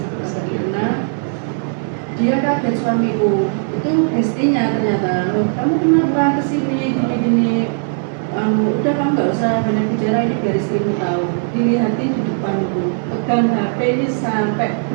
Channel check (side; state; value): left; silent; 61 dB below the other